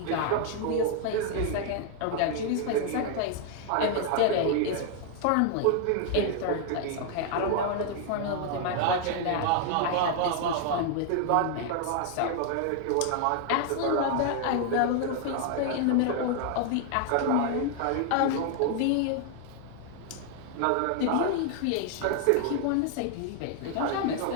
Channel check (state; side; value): different; both; correlation 0.00